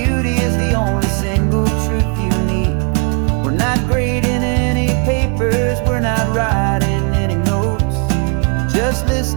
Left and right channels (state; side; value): quieter; left; 36.7 dB